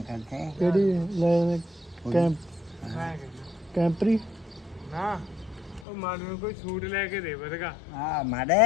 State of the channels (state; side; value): drops out; right; at 5.9 s